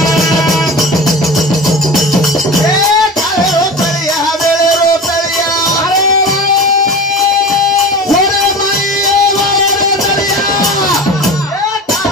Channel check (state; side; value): normal; both; correlation 0.32